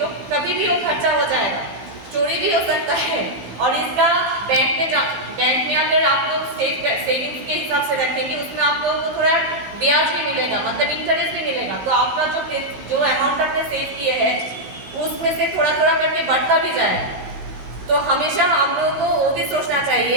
कभी भी वो खर्चा हो जाएगा, चोरी भी हो सकता है। और इसका बैंक में अगर आप लोग सेविंग्स के हिसाब से रखेंगे उसमें आप लोगों को थोड़ा ब्याज भी मिलेगा, मतलब इंटरेस्ट भी मिलेगा। तो आपका जो अमाउंट आपने सेव किए हैं उसमें से थोड़ा थोड़ा करके बढ़ता भी जाएगा। तो हमेशा हम लोगों को वो भी सोचना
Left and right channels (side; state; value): left; late; 16 ms